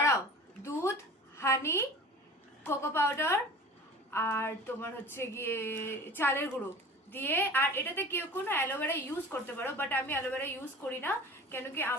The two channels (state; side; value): normal; both; correlation 0.40